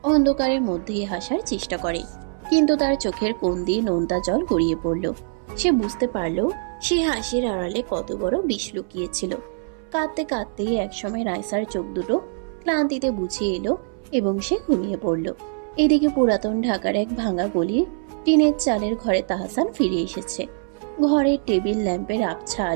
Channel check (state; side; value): silent; left; 63 dB below the other